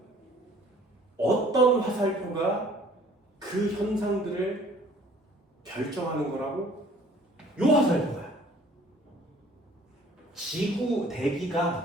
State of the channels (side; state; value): both; normal; correlation 0.54